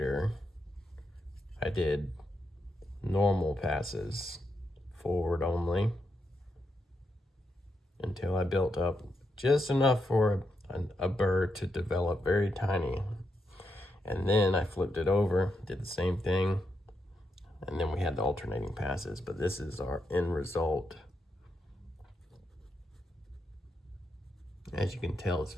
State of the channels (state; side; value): normal; both; correlation 0.82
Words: I did normal passes forward only until I built up just enough for a burr to develop very tiny. And then I flipped it over, did the same thing, and then we had the alternating passes. But this is our end result. As you can tell, it's